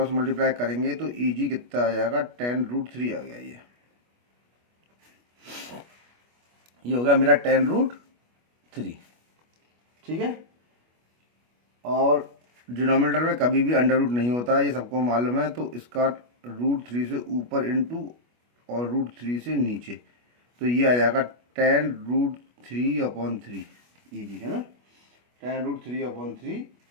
मल्टीप्लाई करेंगे तो ई जी कितना आ जाएगा 10√3 आ गया। ये हो गया मेरा 10√3, ठीक है। और डिनोमिनेटर में कभी भी अंडर रूट नहीं होता, ये सबको मालूम है। तो इसका √3 से ऊपर इंटू और √3 से नीचे, तो ये आ जाएगा 10√3/3, ये जी है ना, 10√3/3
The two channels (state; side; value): late; left; 25 ms